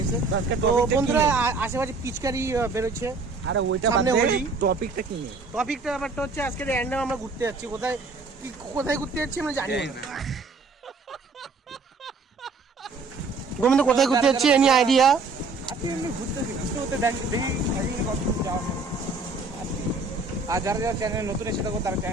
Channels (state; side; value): quieter; left; 3.9 dB